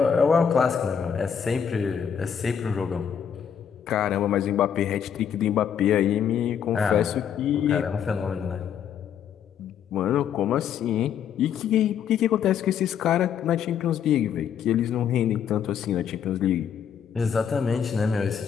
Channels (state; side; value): quieter; right; 8.2 dB